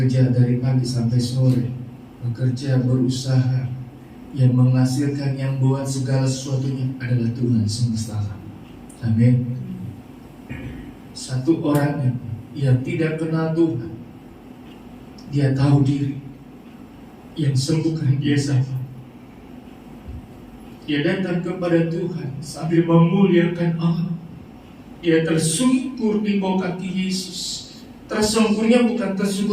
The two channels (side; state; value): both; identical; correlation 1.00